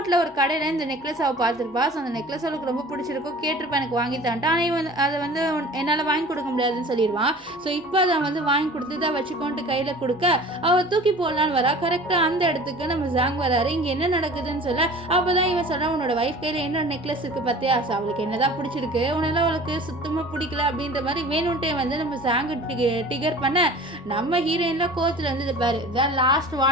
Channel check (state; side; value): normal; both; correlation 0.43